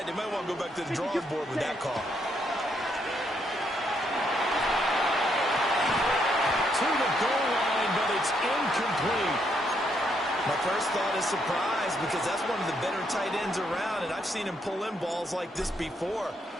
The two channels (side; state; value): both; normal; correlation 0.75